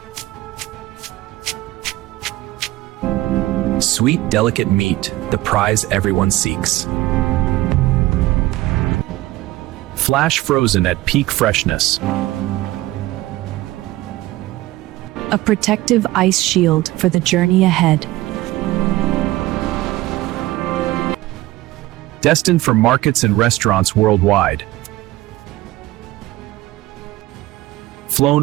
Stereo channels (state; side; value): quieter; left; 17.5 dB